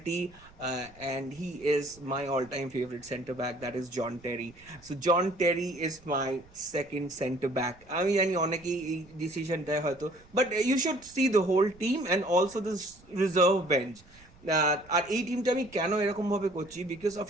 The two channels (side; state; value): right; noise; rumble, 25 dB below the sound